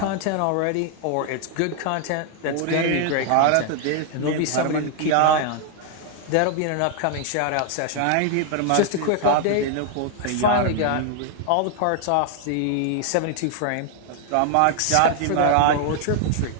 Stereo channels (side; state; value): both; different; correlation 0.00